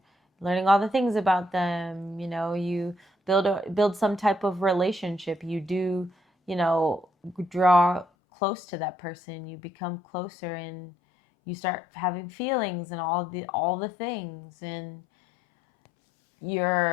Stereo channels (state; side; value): drops out; right; at 8.1 s